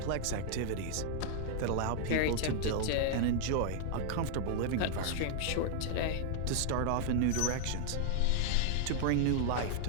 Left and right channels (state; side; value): different; both; correlation 0.00